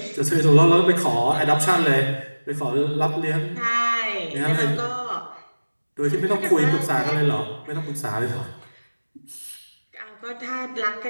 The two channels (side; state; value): both; inverted; correlation -1.00